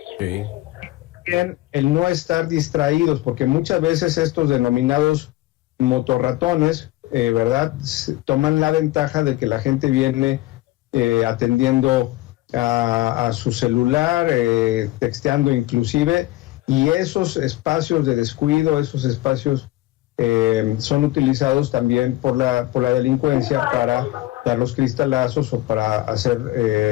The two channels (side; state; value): right; quieter; 17.3 dB